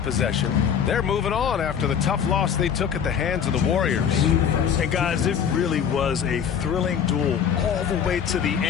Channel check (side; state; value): right; quieter; 7.9 dB